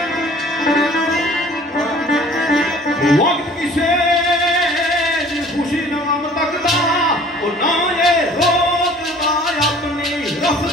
वक्त किसे खुशी ना तकदा और ना ये रोकदा अपनी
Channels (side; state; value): both; normal; correlation 0.50